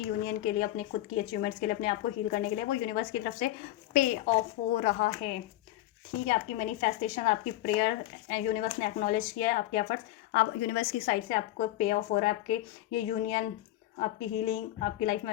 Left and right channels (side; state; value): right; quieter; 15.2 dB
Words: यूनियन के लिए, अपने खुद की अचीवमेंट्स के लिए, अपने आप को हील करने के लिए, वो यूनिवर्स की तरफ से पे ऑफ हो रहा है। ठीक है, आपकी मैनिफेस्टेशन, आपकी प्रेयर, यूनिवर्स ने एक्नॉलेज किया है आपके एफर्ट्स, आप यूनिवर्स की साइड से आपको पे ऑफ हो रहा है। आपके ये यूनियन, आपकी हीलिंग, आपकी लाइफ में